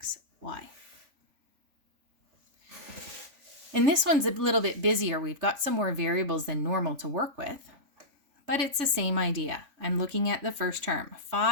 And this one's a little bit busier. We've got some more variables than normal to work with, but it's the same idea. I'm looking at the first term,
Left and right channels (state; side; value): late; left; 3.5 ms